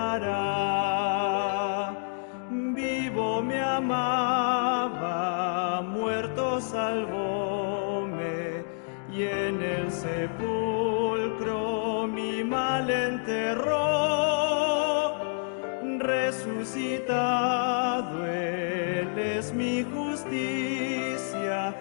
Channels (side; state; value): right; silent; digital silence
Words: Vivo me amaba, muerto salvóme, y en el sepulcro mi mal enterró. Resucitado Él es mi justicia,